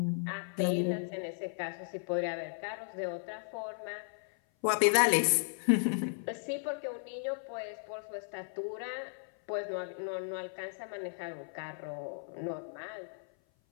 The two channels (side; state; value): right; silent; 54 dB below the other